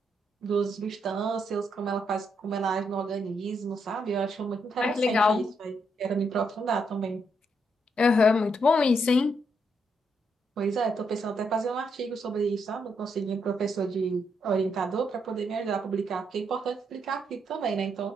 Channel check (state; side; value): normal; both; correlation 0.77